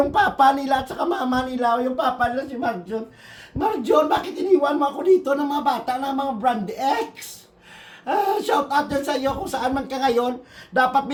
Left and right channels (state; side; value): identical; both; correlation 1.00